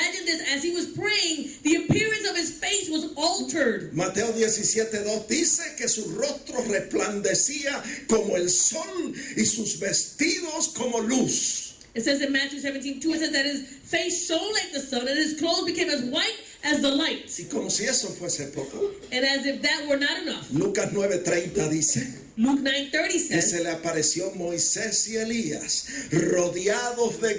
this, as he was praying, the appearance of his face was altered. Mateo 17:2 dice que su rostro resplandecía como el sol y sus vestidos como luz. It says in Matthew 17:2, it says that his face shone like the sun and his clothes became as white as the light. Y como si eso fuese poco, And as if that were not enough, Lucas 9:30 dice Luke 9:30 que says se le apareció Moisés y Elías rodeados de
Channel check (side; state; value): both; identical; correlation 1.00